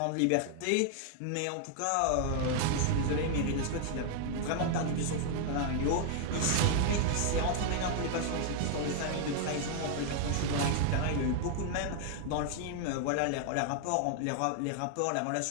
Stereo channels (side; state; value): both; different; correlation 0.00